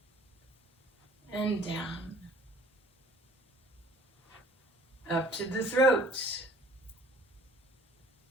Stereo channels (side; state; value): both; normal; correlation 0.52